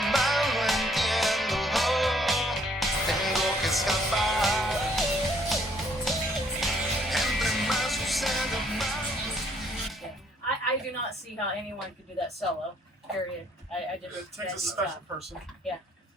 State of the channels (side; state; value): both; normal; correlation 0.65